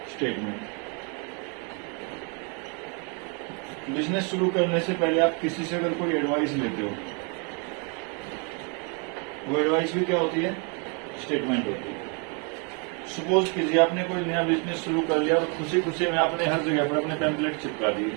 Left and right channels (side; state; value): left; quieter; 36.0 dB